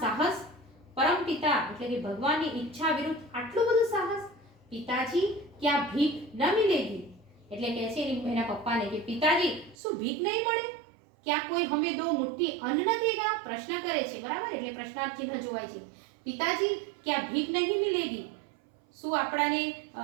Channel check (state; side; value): drops out; left; at 9.8 s